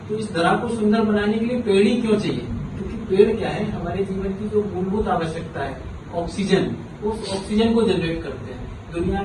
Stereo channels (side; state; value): both; identical; correlation 1.00